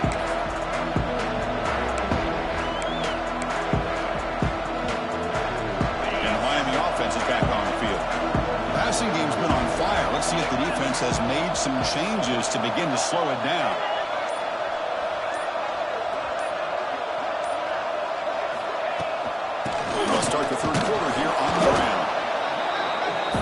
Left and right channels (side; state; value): both; identical; correlation 1.00